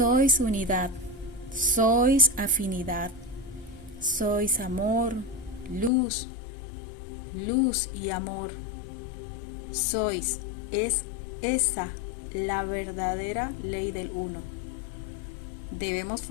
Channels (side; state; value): right; drops out; at 5.9 s